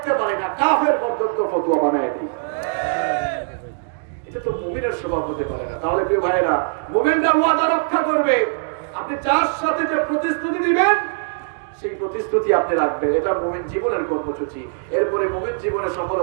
পারি না, কাফের পর্যন্ত ফতোয়া বানায় দিই। এটা তো মুমিনের স্বভাব হতে পারে না। তাহলে প্রিয় ভাইরা, মুমিনরা ওয়াদা রক্ষা করবে। আপনি যার সাথে যে প্রতিশ্রুতি দিবেন সেই প্রতিশ্রুতি আপনি রাখবেন, এটা মুমিন জীবনের কর্মসূচি। এরপরে মুমিন জীবনের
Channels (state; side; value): silent; left; digital silence